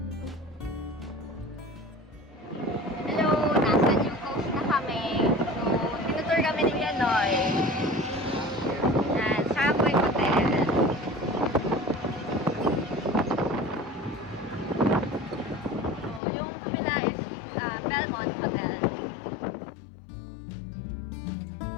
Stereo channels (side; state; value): right; drops out; at 16.2 s